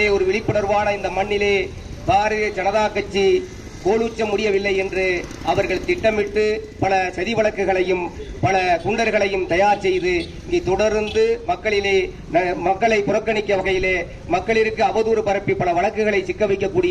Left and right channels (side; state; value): both; identical; correlation 1.00